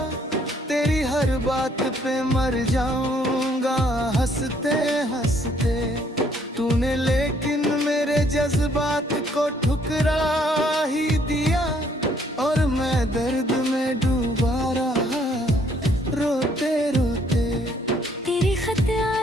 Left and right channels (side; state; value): both; normal; correlation 0.65